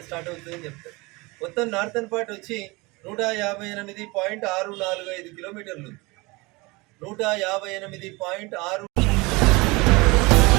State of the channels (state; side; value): quieter; left; 24.6 dB